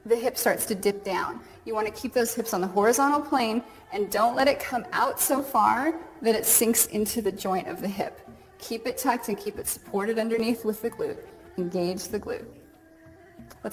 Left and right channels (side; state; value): both; identical; correlation 1.00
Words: the hip starts to dip down. You want to keep those hips on the horizontal plane and don't let it come out so far that it sinks into the joint of the hip. Keep it tucked and keep it supported underneath with the glute. Engage the glute.